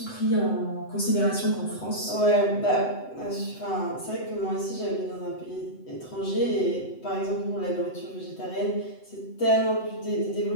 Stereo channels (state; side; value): late; right; 7.9 ms